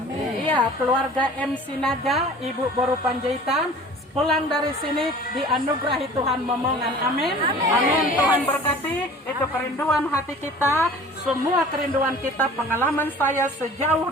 Iya, keluarga MC Naga, Ibu Boru Panjaitan, pulang dari sini dianugerahi Tuhan momongan. Amin. Amin. Tuhan berkati. Itu kerinduan hati kita, semua kerinduan kita, pengalaman saya sejauh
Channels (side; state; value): both; normal; correlation 0.45